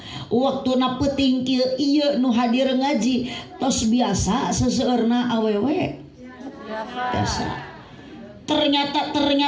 waktuna peuting kieu ieu nu hadir ngaji tos biasa seseueurna awewe. Biasa. Ternyata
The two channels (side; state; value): both; identical; correlation 1.00